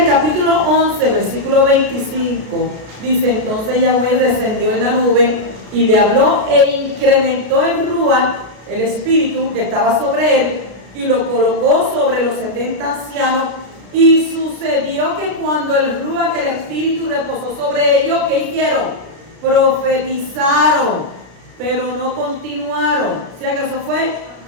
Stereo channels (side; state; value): left; late; 33 ms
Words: el capítulo 11, versículo 25, dice: entonces Yahweh descendió en la nube y le habló e incrementó el Ruach, el espíritu que estaba sobre él, y lo colocó sobre los 70 ancianos. Y sucedió que cuando el Ruach, el espíritu, reposó sobre ellos, ¿qué hicieron? Profetizaron, pero no continuaron. O sea que eso fue